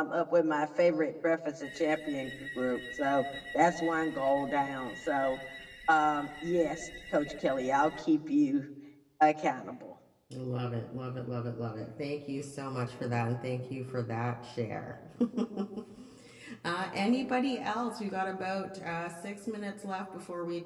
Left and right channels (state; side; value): identical; both; correlation 1.00